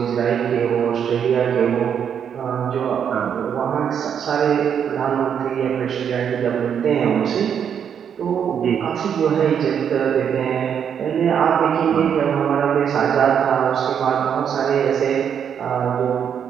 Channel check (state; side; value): quieter; left; 8.1 dB